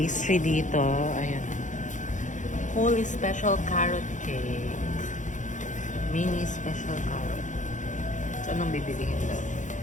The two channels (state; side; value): late; right; 0.36 ms